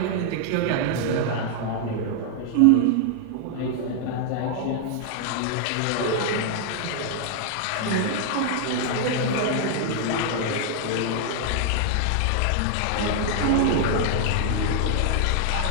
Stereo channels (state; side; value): different; both; correlation 0.00